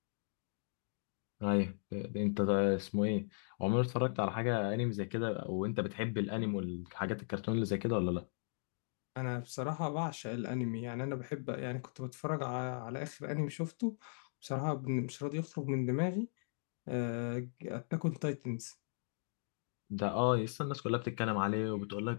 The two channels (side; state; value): right; silent; digital silence